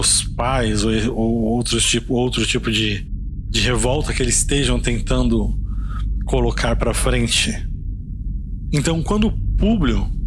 pais ou outro tipo de revolta que eles estejam tentando colocar para frente. Então, quando Públio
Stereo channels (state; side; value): identical; both; correlation 1.00